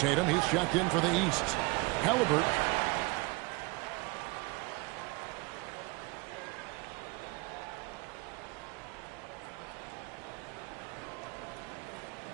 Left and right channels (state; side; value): quieter; left; 25.8 dB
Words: he's checked in for the East. Halliburton.